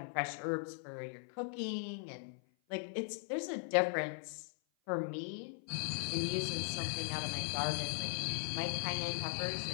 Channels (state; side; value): silent; right; 52 dB below the other